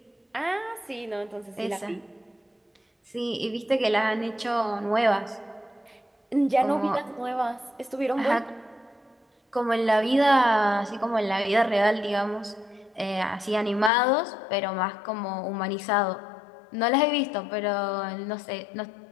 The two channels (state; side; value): drops out; right; at 13.9 s